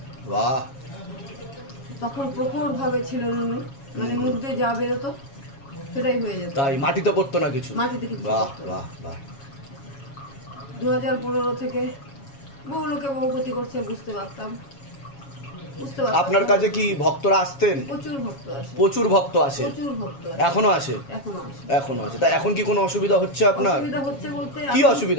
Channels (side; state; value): right; late; 7.3 ms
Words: বাহ। তখন প্রখর ভাবে ছিল নুনু, মানে মুখ দিয়ে যা বেরোতো সেটাই হয়ে যেত, তাই মাটিতে পড়তো না কিছু? মাটিতে কিছু বাহ পড়তো না। বাহ বাহ। 2015 থেকে বহু লোকে বহু ক্ষতি করছে, বুঝতে পারতাম। আপনার কাছে কি ভক্তরা আসতেন? প্রচুর ভক্ত আসে, প্রচুর ভক্ত আসে? প্রচুর ভক্ত আসে, এখনো আসে? এখনো আসে। এখনো আছে। তা এখন কি কোনো অসুবিধা হচ্ছে আপনার? অসুবিধা হচ্ছে বলতে কি এখন